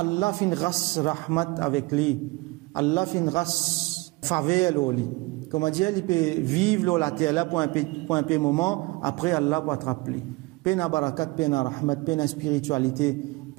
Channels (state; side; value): quieter; left; 23.7 dB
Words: fin ras rahmat avec lui. Allah fin ras faveur lui. Comme dire, il peut vivre la terre là pour un peu moment, après Allah va attraper. Pena barakat, pena rahmat, pena spiritualité,